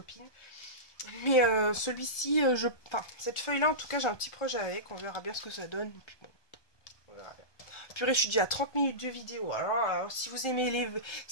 Mais celui-ci, enfin, cette feuille-là, en tout cas, j'ai un petit projet avec. On verra bien ce que ça donne. Et puis bon, on verra bien. Purée, je suis déjà à 30 minutes de vidéo. Alors si vous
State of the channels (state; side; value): late; right; 1.2 ms